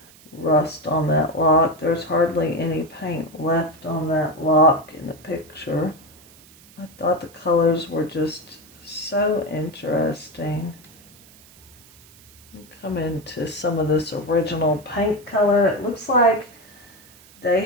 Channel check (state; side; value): noise; right; hiss, 24 dB below the sound